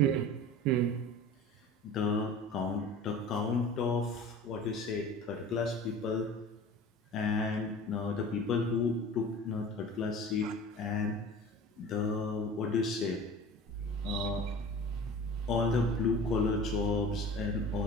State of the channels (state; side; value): normal; both; correlation 0.39